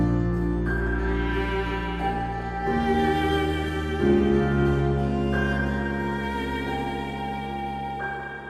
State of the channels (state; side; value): identical; both; correlation 1.00